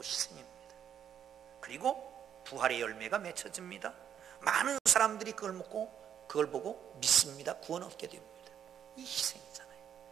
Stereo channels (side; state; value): left; quieter; 9.0 dB